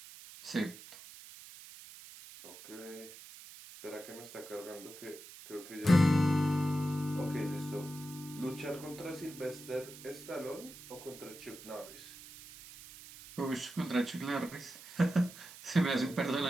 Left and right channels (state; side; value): noise; right; hiss, 16 dB below the sound